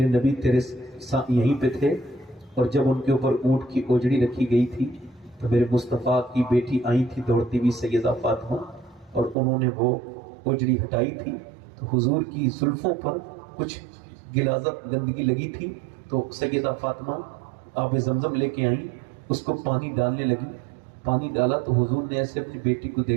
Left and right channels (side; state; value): left; drops out; at 9.3 s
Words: نبی تیرے یہیں پہ تھے اور جب ان کے اوپر اونٹ کی اوجڑی رکھی گئی تھی تو میرے مصطفیٰ کی بیٹی آئی تھی دوڑتی ہوئی سیدہ فاطمہ اور انہوں نے وہ اوجڑی ہٹائی تھی تو حضور کی زلفوں پر کچھ غلاظت گندگی لگی تھی تو سیدہ فاطمہ آب زمزم لے کے آئیں، اس کو پانی ڈالنے لگی. پانی ڈالا تو حضور نے ایسے اپنی بیٹی کو